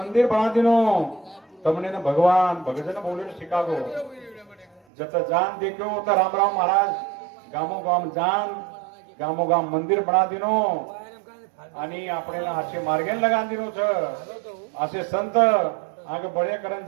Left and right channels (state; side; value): drops out; left; at 4.8 s